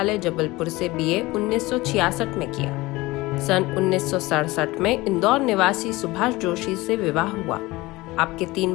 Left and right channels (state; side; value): quieter; right; 20.6 dB